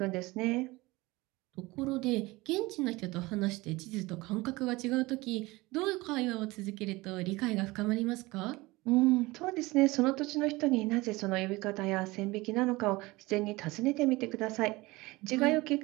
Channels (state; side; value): quieter; left; 21.4 dB